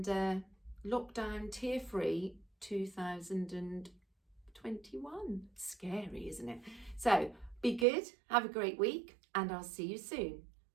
lockdown tear-free 2021. Scary, isn't it? So be good, have a great week, and I'll see you soon.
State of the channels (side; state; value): left; drops out; at 7.9 s